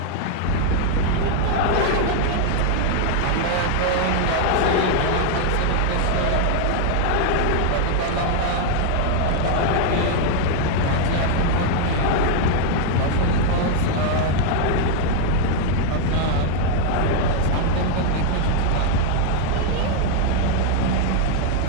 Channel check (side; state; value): both; different; correlation 0.00